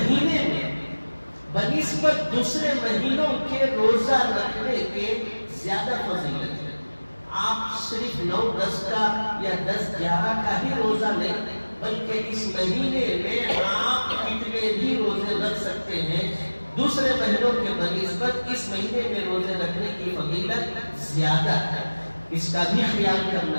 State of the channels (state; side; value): inverted; both; correlation -1.00